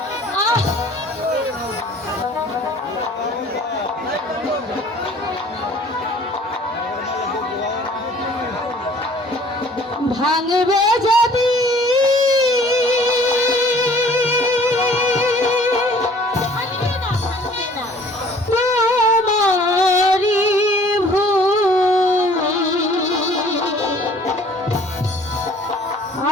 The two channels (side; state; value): both; normal; correlation 0.53